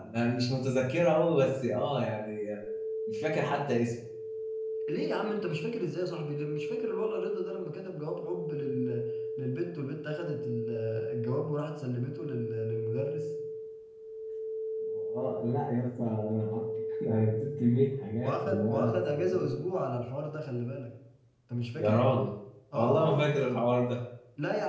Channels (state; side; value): identical; both; correlation 1.00